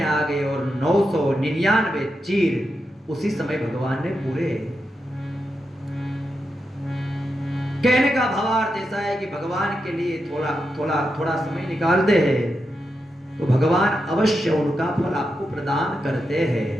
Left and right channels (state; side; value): normal; both; correlation 0.86